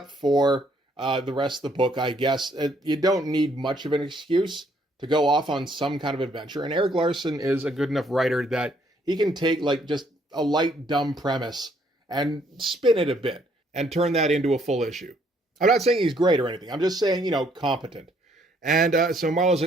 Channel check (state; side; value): normal; both; correlation 0.67